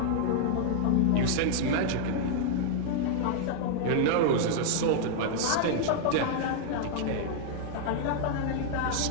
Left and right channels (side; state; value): both; different; correlation -0.01